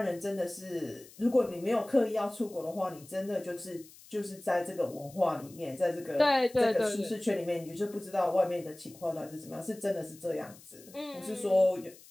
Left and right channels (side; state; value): left; noise; hiss, 22 dB below the sound